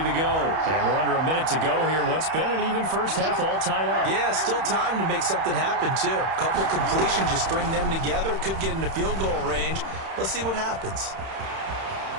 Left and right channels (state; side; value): late; left; 31 ms